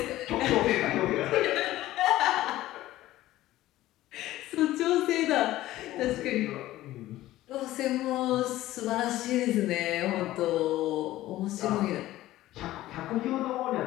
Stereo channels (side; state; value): right; quieter; 15.5 dB